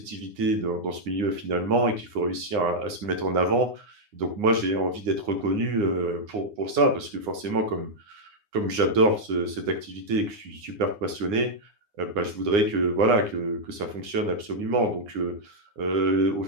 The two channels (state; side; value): late; left; 9.7 ms